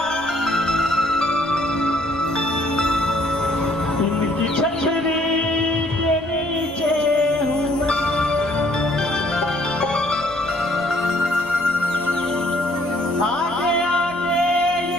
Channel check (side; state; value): left; noise; rumble, 23 dB below the sound